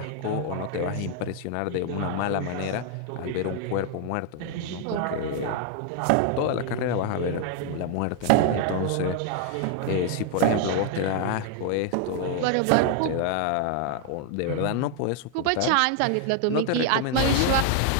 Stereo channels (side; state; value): both; different; correlation 0.00